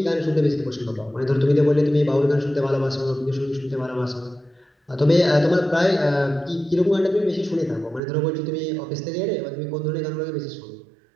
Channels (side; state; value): left; drops out; at 8.0 s